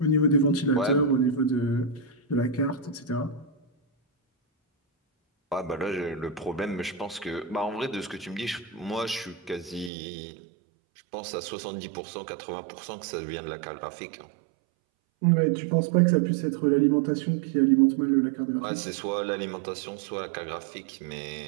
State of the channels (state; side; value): drops out; left; at 9.9 s